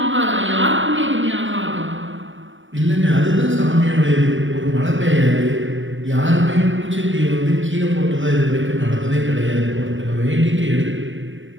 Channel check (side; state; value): left; late; 0.56 ms